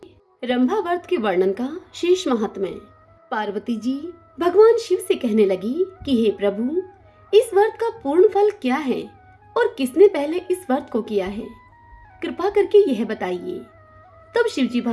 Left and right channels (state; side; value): identical; both; correlation 1.00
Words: रंभा व्रत के वर्णन का शेष महात्म्य। पार्वती जी भगवान शिव से कहने लगी कि हे प्रभु, इस व्रत का पूर्ण फल क्या है और किसने पहले इस व्रत को किया है, कृपा करके यह बताइए। तब शिवजी